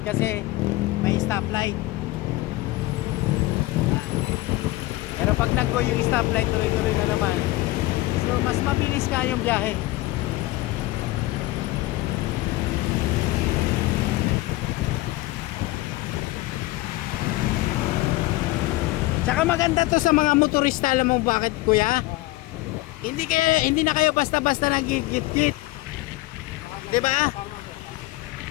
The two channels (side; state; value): right; quieter; 18.8 dB